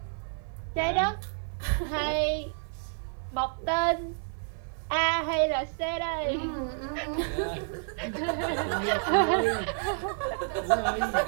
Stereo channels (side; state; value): left; silent; 58 dB below the other